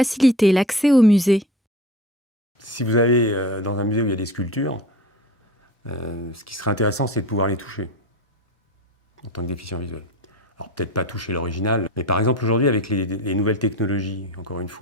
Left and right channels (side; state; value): both; normal; correlation 0.33